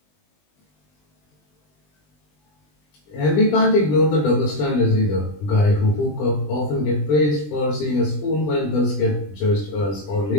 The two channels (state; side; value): late; right; 20 ms